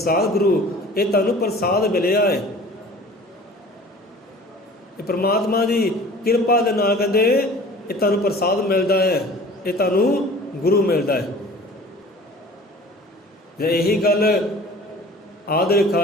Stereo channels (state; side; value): normal; both; correlation 0.45